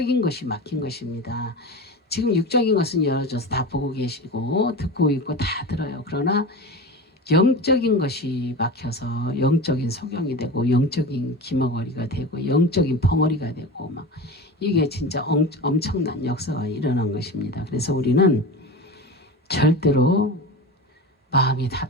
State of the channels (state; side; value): normal; both; correlation 0.28